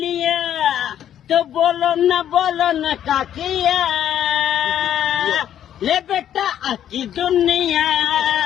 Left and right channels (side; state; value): right; quieter; 10.4 dB